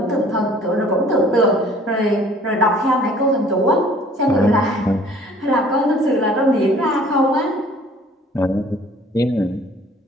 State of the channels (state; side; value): normal; both; correlation 0.53